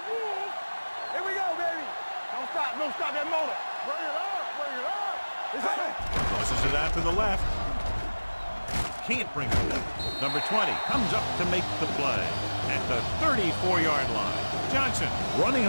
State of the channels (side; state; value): both; inverted; correlation -1.00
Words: rules. Here we go, baby. Don't stop that motor. Bring it up. It's on. Tosses it out to the left. Can't bring it up. Number 20 comes up to make the play at the 34-yard line. Johnson running